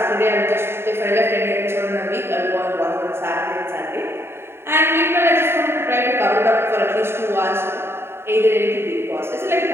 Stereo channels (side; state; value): left; late; 0.12 ms